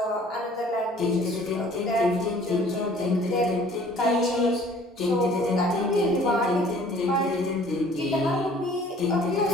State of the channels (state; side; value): normal; both; correlation 0.53